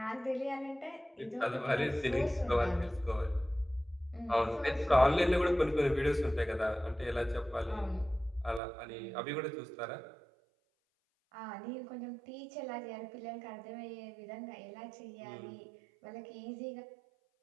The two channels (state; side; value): drops out; left; at 8.6 s